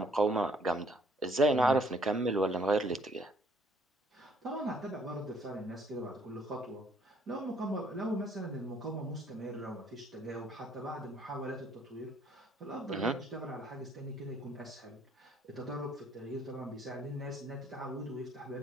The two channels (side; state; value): both; normal; correlation 0.63